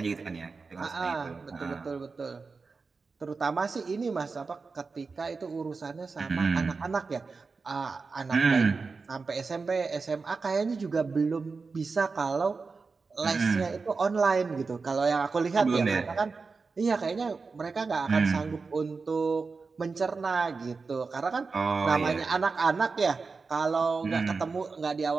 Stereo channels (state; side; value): quieter; left; 4.5 dB